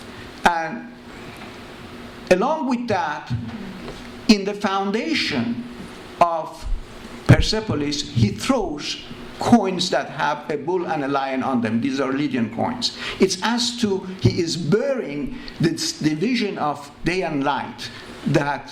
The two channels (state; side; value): identical; both; correlation 1.00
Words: And along with that, in the foundation of Persepolis, he throws coins that have a bull and a lion on them. These are Lydian coins. It's as to he is burying this division of day and light